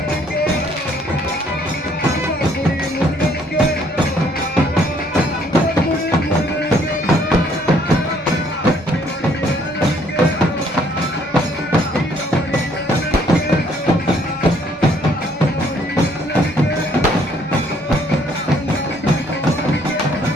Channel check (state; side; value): normal; both; correlation 0.64